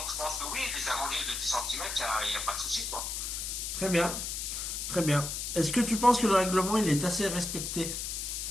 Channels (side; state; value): left; noise; hiss, 4 dB below the sound